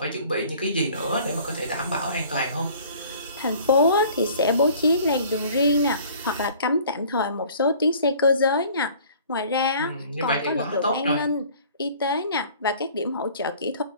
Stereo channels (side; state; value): both; inverted; correlation -0.51